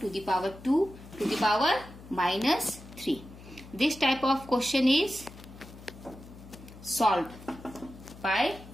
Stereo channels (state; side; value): noise; left; hum, 18 dB below the sound